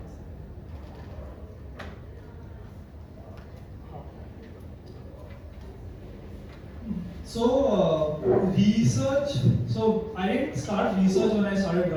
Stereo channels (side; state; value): both; identical; correlation 1.00